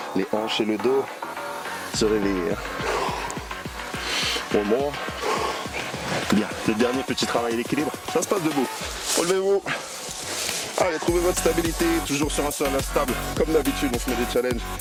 les hanches et le dos se réveiller. One more. Bien, le dernier petit travail d'équilibre, ça se passe debout. Relevez-vous. Allez, trouvez votre stabilité, toujours sur un sol instable. Comme d'habitude, on se met des challenges.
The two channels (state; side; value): identical; both; correlation 1.00